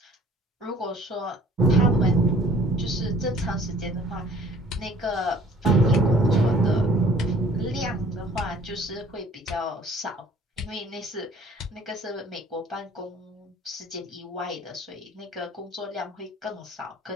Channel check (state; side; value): normal; both; correlation 0.54